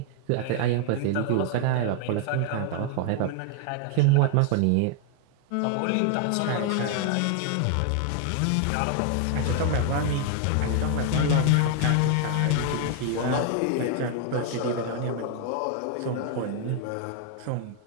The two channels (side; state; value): both; different; correlation 0.00